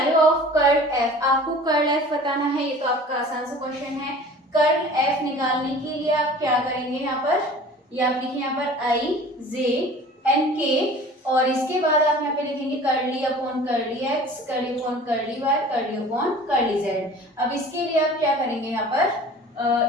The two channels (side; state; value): both; normal; correlation 0.44